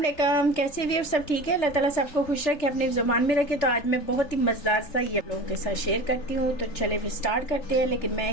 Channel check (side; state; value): right; late; 3.4 ms